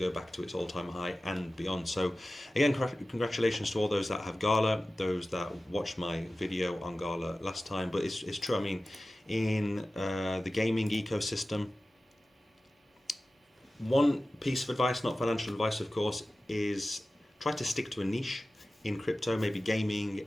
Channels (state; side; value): normal; both; correlation 0.96